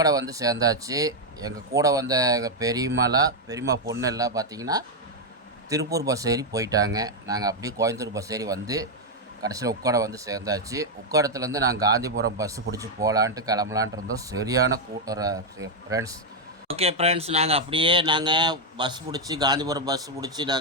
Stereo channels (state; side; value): normal; both; correlation 0.01